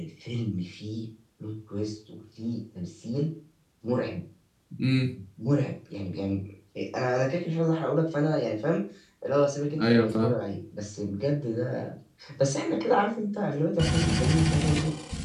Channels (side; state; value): both; identical; correlation 1.00